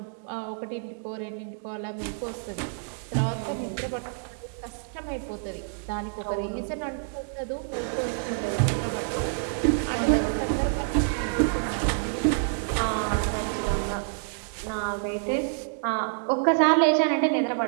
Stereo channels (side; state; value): left; silent; digital silence